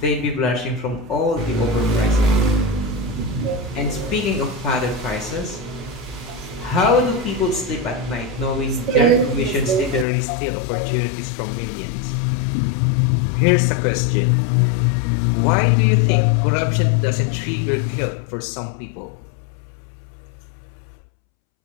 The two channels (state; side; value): drops out; right; at 10.1 s